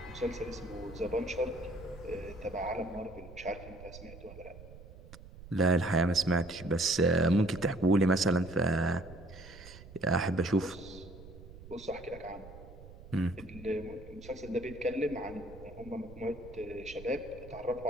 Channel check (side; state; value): right; noise; rumble, 16 dB below the sound